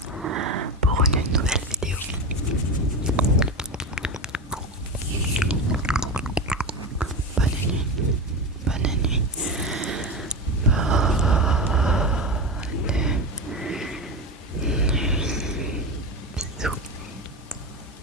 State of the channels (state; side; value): normal; both; correlation 0.21